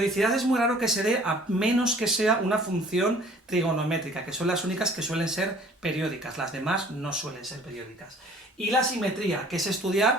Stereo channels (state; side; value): normal; both; correlation 0.52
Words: es muy raro que se dé a menos que sea una función trigonométrica, que son las únicas que suelen ser periódicas, las demás no suelen ser periódicas. Y la simetría, que es